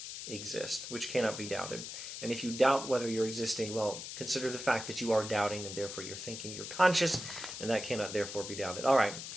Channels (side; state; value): left; noise; hiss, 8 dB below the sound